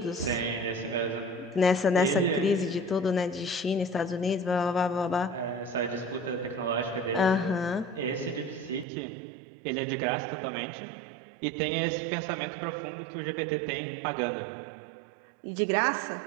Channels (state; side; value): drops out; left; at 8.8 s